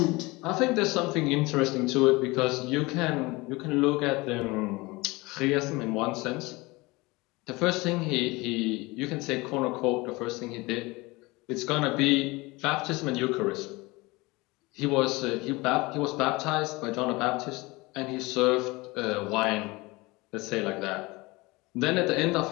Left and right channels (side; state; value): right; quieter; 23.2 dB